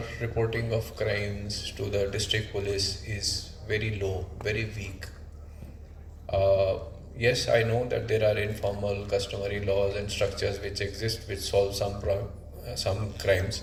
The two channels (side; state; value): both; identical; correlation 1.00